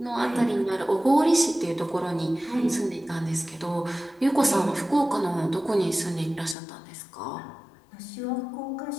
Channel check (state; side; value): drops out; right; at 6.6 s